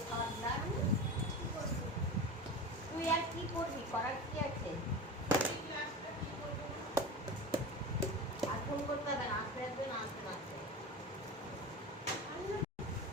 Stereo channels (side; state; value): both; normal; correlation 0.29